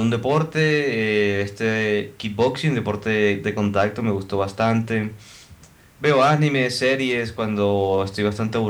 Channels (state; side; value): identical; both; correlation 1.00